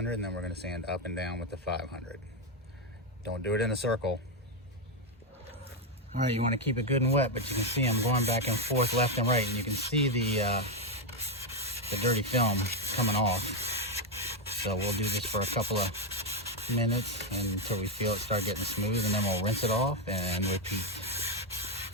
and then we're going to sand up and down with the 500. Don't do it in a circle. All right, you want to keep it good and wet, but you can see I'm going back and forth left and right, and you can see the dirty film coming off. So we'll do this for a couple of minutes until we feel it start getting smooth, and then we'll rinse it off and repeat.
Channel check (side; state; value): both; normal; correlation 0.05